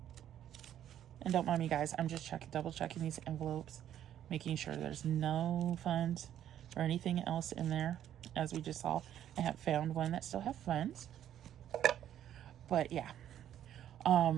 And don't mind me, guys, I'm just double checking these envelopes, making sure there's no funds or anything else in there. As we just saw, I have found one that still have funds. But yeah,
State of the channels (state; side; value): quieter; left; 10.9 dB